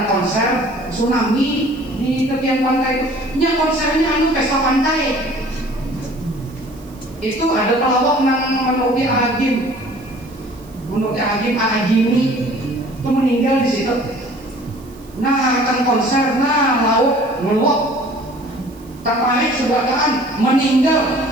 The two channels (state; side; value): noise; right; hiss, 27 dB below the sound